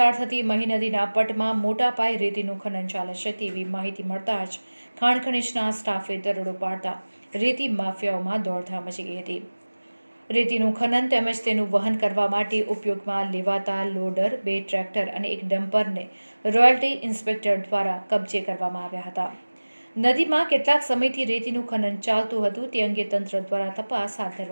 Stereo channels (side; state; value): both; inverted; correlation -1.00